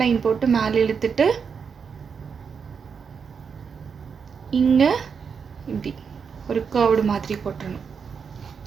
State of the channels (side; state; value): left; quieter; 6.2 dB